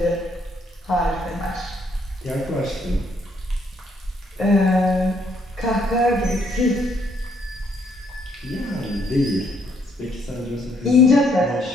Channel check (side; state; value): both; normal; correlation 0.70